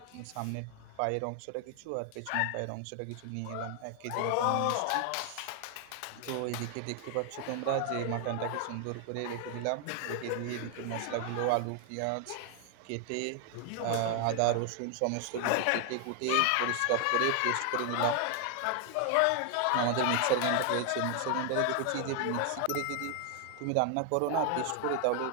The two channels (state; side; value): different; both; correlation 0.00